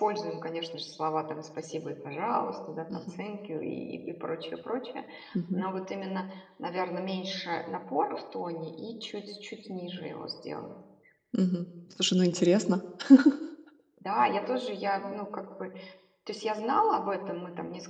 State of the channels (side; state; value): both; identical; correlation 1.00